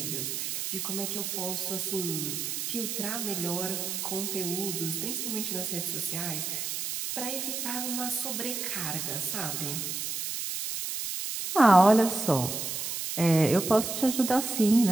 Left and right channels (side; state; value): right; noise; hiss, 3 dB below the sound